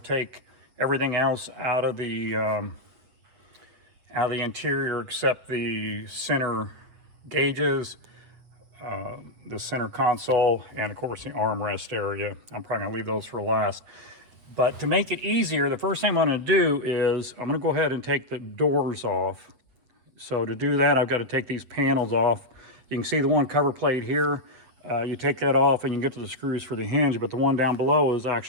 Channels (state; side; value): late; left; 8.3 ms